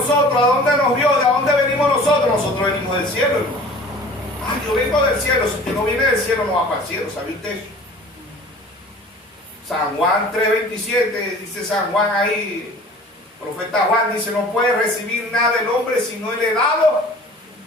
¿A dónde nos vio? ¿De dónde venimos nosotros? Nosotros venimos del cielo, hermano. Yo vengo del cielo. Si usted no viene del cielo, no va para el cielo. ¿Sabe usted eso? San Juan 3:27, dice San Juan ahí, profeta Juan dice: no puede recibir nada del hombre si no le he dado.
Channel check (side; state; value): both; normal; correlation 0.45